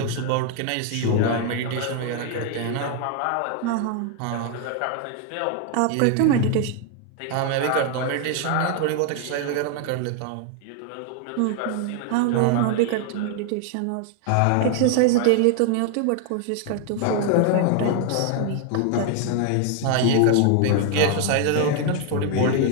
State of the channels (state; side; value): different; both; correlation 0.00